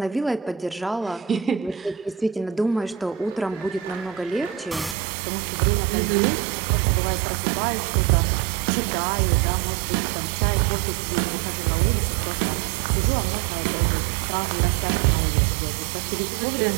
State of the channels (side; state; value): left; drops out; at 5.0 s